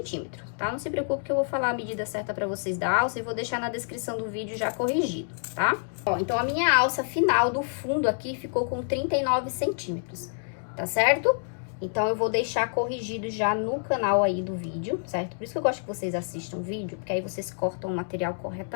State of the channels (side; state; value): right; silent; digital silence